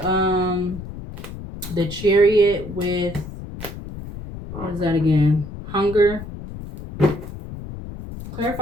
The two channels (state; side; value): noise; left; rumble, 11 dB below the sound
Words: the Chariot with, what is that again? Hunger.